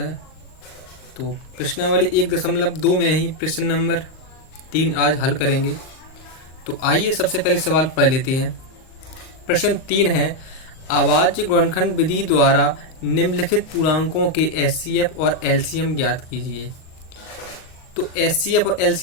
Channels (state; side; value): late; right; 38 ms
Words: तो प्रश्नावली 1.2 में ही प्रश्न नंबर 3 आज हल करेंगे। तो आइए सबसे पहले सवाल पढ़ लेते हैं। प्रश्न 3 है, अभाज्य गुणनखंड विधि द्वारा निम्नलिखित पूर्णांकों के एचसीएफ और एलसीएम ज्ञात कीजिए। तो एचसीएफ और